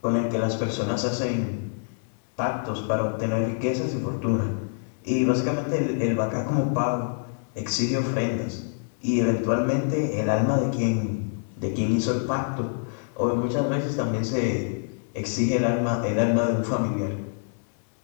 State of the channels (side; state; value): right; silent; digital silence